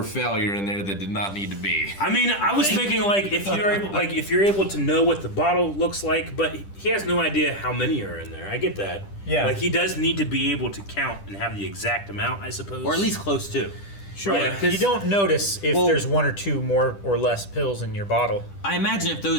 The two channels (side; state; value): right; late; 10 ms